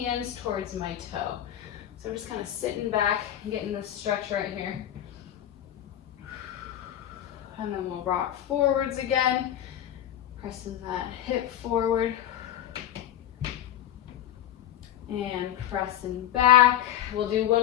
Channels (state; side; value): quieter; right; 11.4 dB